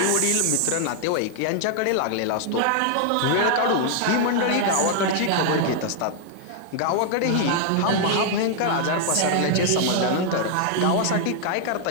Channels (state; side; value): different; both; correlation 0.00